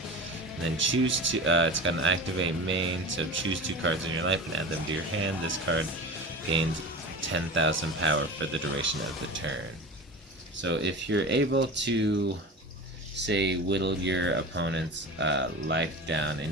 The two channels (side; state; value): both; normal; correlation 0.32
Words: And then choose to, it's got an activate main, so choose 2 cards in your life and add them to your hand. This card gains 10,000 power for the duration of the turn. So if you're able to, say, whittle your opponent's life down